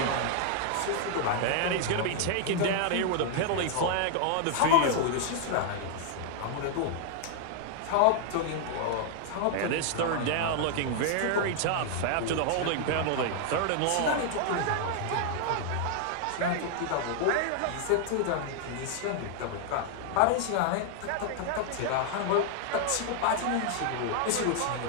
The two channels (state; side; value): different; both; correlation 0.00